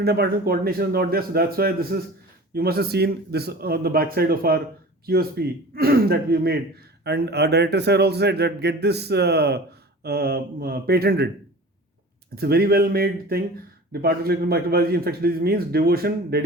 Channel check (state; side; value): normal; both; correlation 0.39